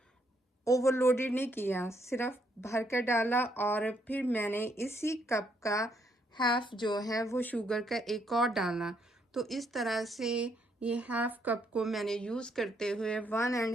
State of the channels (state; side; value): normal; both; correlation 0.73